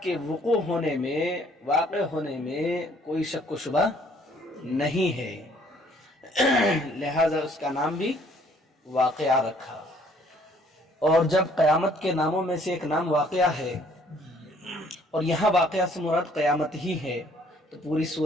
کے وقوع ہونے میں، واقع ہونے میں کوئی شک و شبہ نہیں ہے، لہذا اس کا نام بھی واقعہ رکھا. اور جب قیامت کے ناموں میں سے ایک نام واقعہ ہے اور یہاں واقعہ سے مراد قیامت ہی ہے، تو پوری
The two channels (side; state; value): both; normal; correlation 0.61